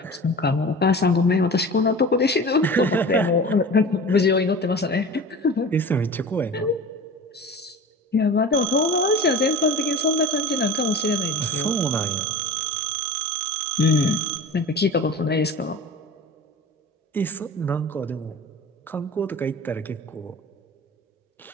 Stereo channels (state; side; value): normal; both; correlation 0.36